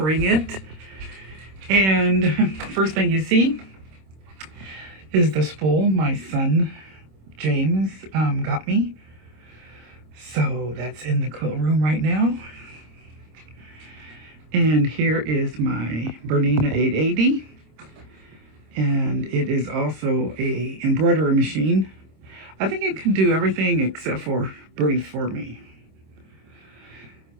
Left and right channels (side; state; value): left; late; 26 ms